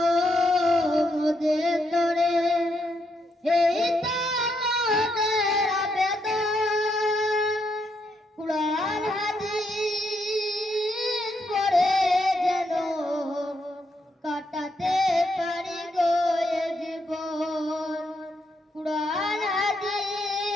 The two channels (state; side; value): normal; both; correlation 0.78